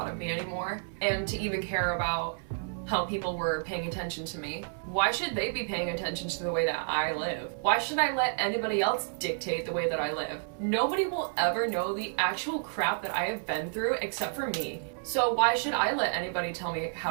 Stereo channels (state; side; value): silent; left; 57 dB below the other